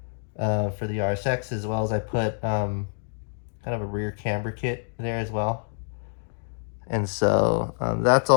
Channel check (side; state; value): right; silent; digital silence